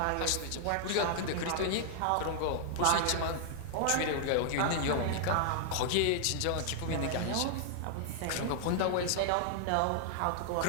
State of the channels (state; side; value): different; both; correlation -0.01